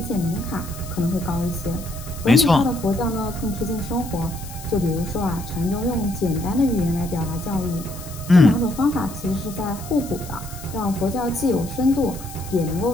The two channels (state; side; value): noise; left; hiss, 15 dB below the sound